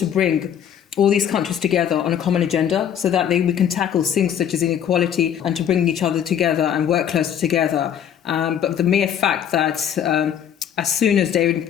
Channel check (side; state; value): right; quieter; 9.2 dB